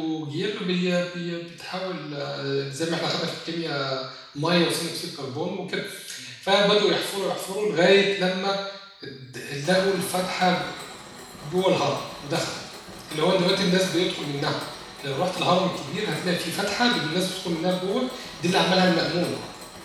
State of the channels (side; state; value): both; identical; correlation 1.00